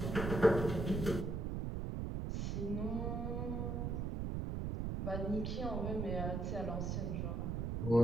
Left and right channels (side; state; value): right; noise; rumble, 1 dB below the sound